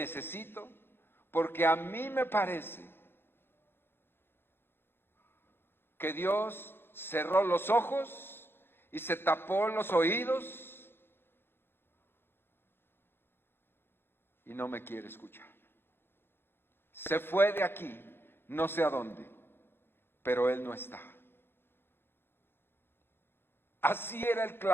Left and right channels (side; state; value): right; late; 0.11 ms